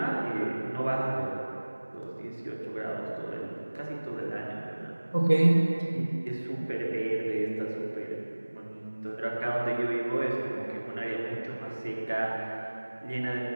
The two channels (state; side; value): inverted; both; correlation -1.00